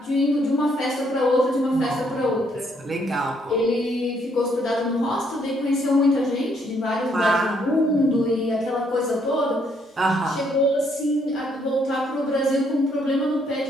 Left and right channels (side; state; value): both; normal; correlation 0.70